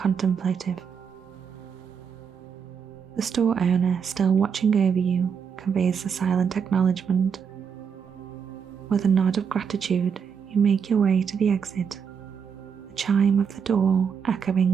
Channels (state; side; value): quieter; left; 6.9 dB